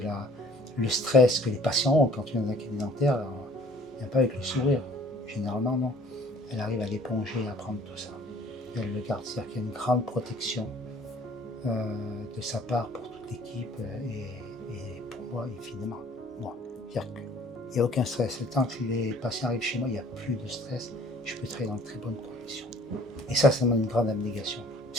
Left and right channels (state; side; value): normal; both; correlation 0.54